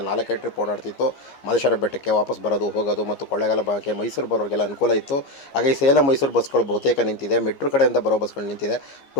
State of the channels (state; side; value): late; right; 15 ms